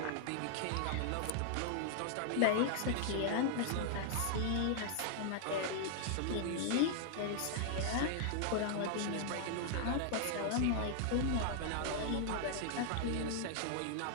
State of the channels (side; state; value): both; different; correlation -0.01